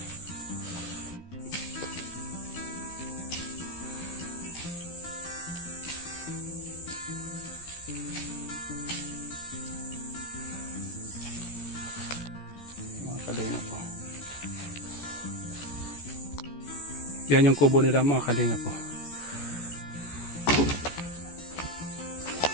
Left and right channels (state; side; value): late; right; 14 ms